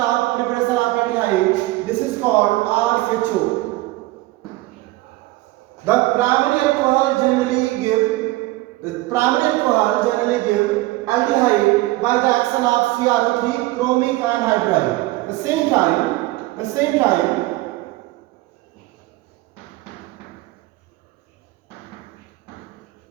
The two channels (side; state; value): left; quieter; 19.0 dB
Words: preparation of aldehyde. This is called RHO. The primary alcohol generally give aldehyde by the action of CrO3, chromic anhydride. The same time,